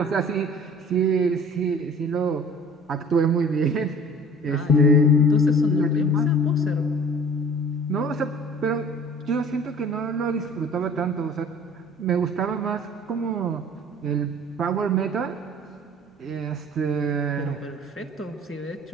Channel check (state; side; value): normal; both; correlation 0.47